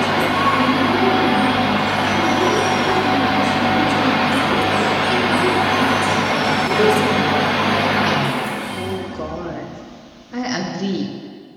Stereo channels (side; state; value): both; identical; correlation 1.00